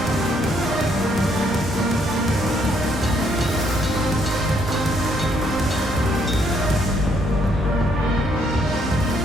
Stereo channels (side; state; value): both; normal; correlation 0.70